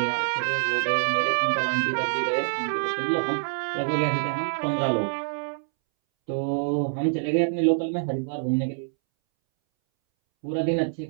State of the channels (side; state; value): left; silent; 61 dB below the other